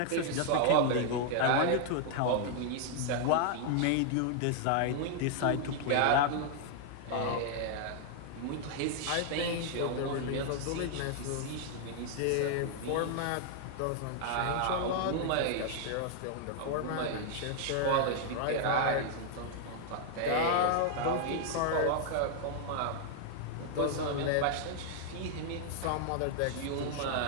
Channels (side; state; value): both; different; correlation 0.00